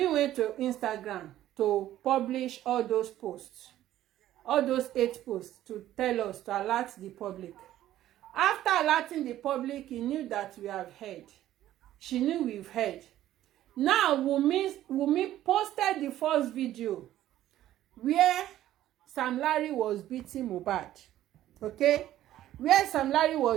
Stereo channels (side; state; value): left; quieter; 13.2 dB